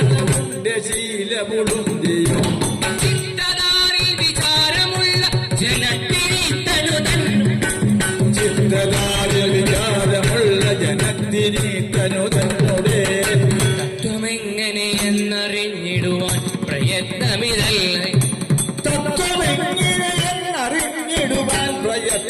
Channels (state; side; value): identical; both; correlation 1.00